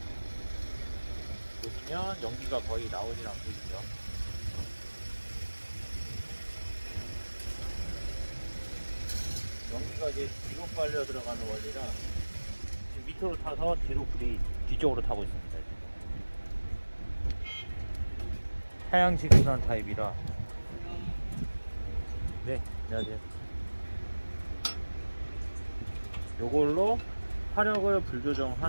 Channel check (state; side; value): inverted; both; correlation -1.00